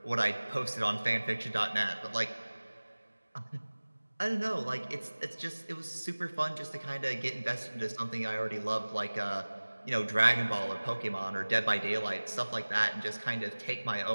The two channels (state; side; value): inverted; both; correlation -1.00